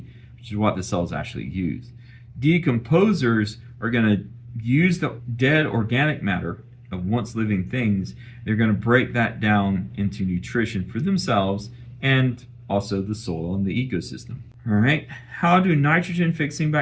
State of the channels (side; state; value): both; identical; correlation 1.00